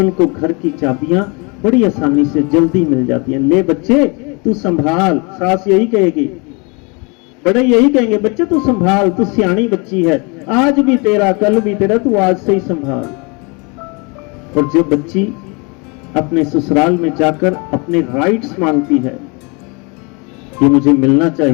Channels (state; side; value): quieter; right; 30.5 dB